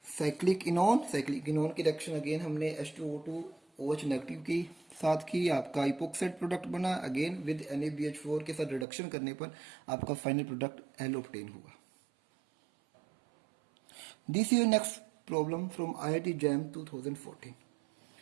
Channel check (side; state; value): left; drops out; at 8.8 s